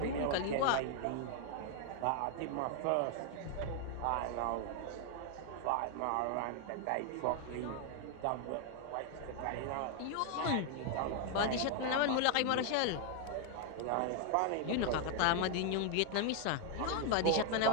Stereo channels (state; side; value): different; both; correlation 0.00